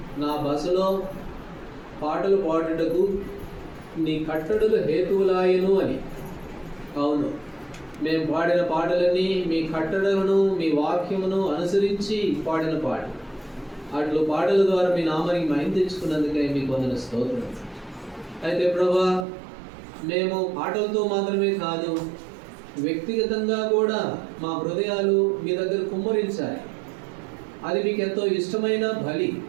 నా బసలో పాటలు పాడుటకు నీ కట్టడులు హేతువులాయను అని. అవును, మేము పాడిన పాటలన్నీ మీ కట్టడలను, మీ వాక్యమును అనుసరించి పాడిన పాటలు. అట్లు పాటల ద్వారా మీ నామానికి మహిమ తెచ్చుకున్నందుకే మీకు వందన స్తోత్రం. అయితే ప్రభా, మేము పాటలతో మాత్రమే కాదు, వ్యక్తిగతంగా కూడా మా హృదయాలు మీ దగ్గర కుమ్మరించాలి. అది మీకు ఎంతో ఇష్టమైన బలి.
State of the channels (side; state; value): left; drops out; at 19.2 s